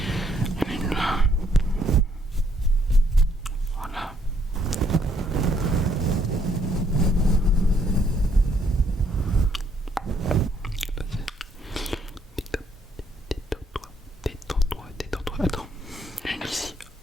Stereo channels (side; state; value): both; normal; correlation 0.69